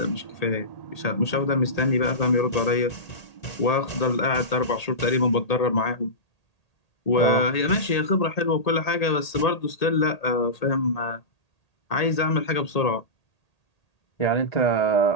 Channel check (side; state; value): right; late; 1.8 ms